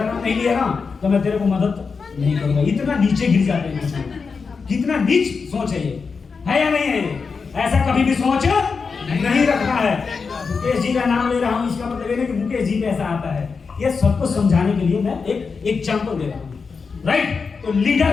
नाम नहीं लिया ना तो मैं तेरे को मदद नहीं करूंगा। इतना नीचे गिर जाते हैं। कितना नीच सोच है ये, है या नहीं है? ऐसा कभी भी सोच नहीं रखना है। मुकेश जी का नाम ले रहा हूँ, इसका मतलब ये नहीं कि मुकेश जी कैसा आता है। ये सबको समझाने के लिए मैं एक एग्जाम्पल दे रहा हूँ। राइट? तो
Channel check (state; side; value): quieter; right; 5.1 dB